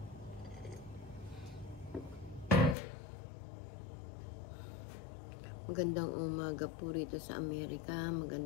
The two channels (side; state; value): right; drops out; at 2.8 s